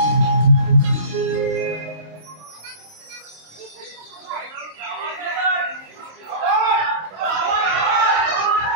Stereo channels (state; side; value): late; left; 27 ms